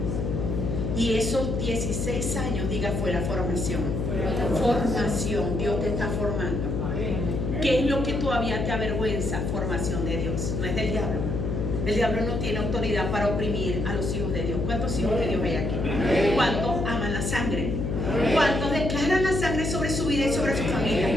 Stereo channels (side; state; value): left; noise; hum, 1 dB below the sound